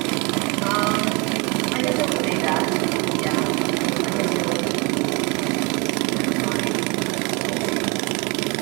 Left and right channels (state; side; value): quieter; left; 28.1 dB